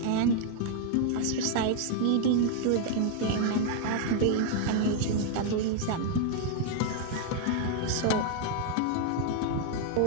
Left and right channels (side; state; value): both; different; correlation 0.00